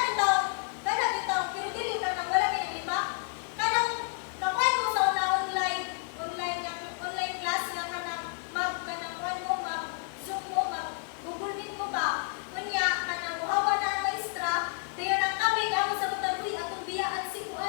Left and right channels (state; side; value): silent; right; 58 dB below the other